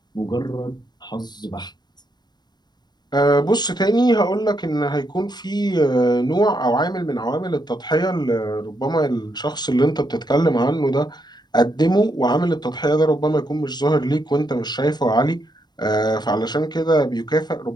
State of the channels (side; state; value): right; late; 0.20 ms